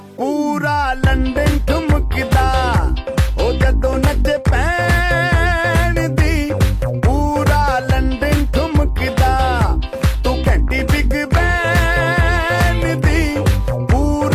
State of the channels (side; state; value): both; identical; correlation 1.00